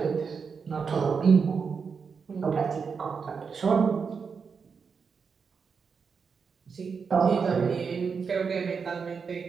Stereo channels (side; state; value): left; quieter; 5.7 dB